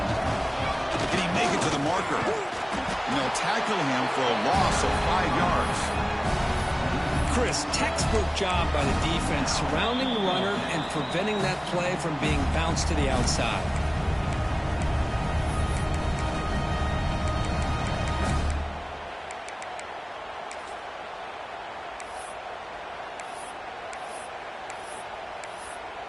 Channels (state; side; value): identical; both; correlation 1.00